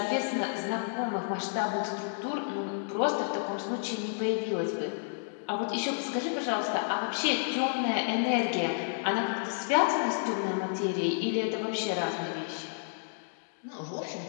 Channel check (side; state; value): right; silent; digital silence